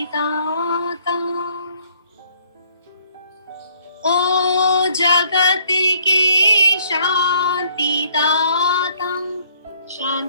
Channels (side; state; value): both; inverted; correlation -0.64